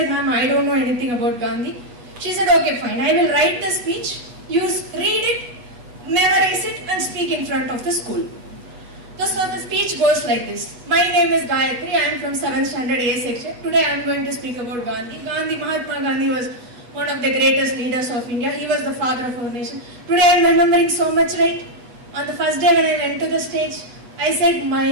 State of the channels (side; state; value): left; late; 8.3 ms